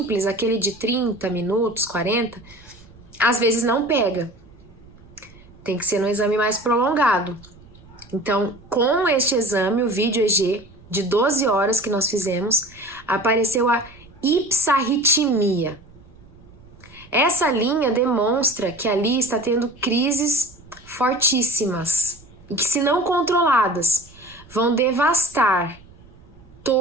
aquele de 30 minutos, 40, às vezes não pega. Tem que ser um exame mais prolongado. Então, com este exame, o vídeo EG, de 12 horas que nós fizemos, apareceu a ipsarritmia. Essa linha demonstra que ali está tendo crises fortíssimas e que, se não controladas, vão devastar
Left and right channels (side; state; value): right; noise; rumble, 24 dB below the sound